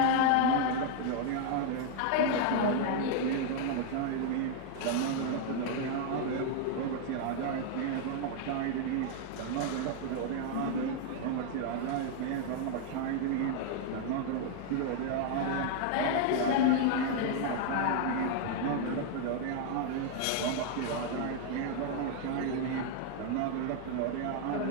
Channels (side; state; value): both; different; correlation 0.00